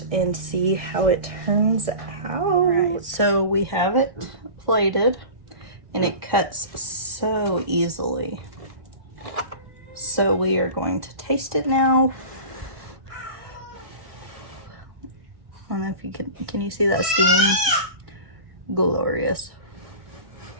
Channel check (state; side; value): late; left; 1.6 ms